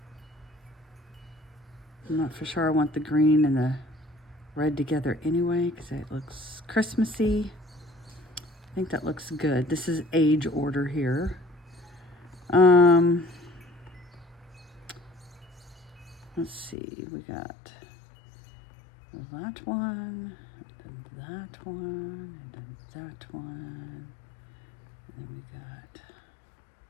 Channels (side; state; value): right; drops out; at 16.8 s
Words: I'm not for sure I want the green and the red together anyway, because it looks Christmassy. I think that looks good. This is age order here. Let's see, we got that one, and that one, and that one, and then we got,